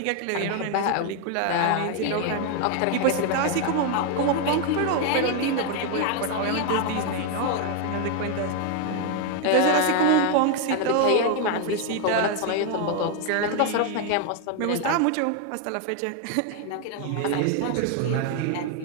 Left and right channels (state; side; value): different; both; correlation 0.01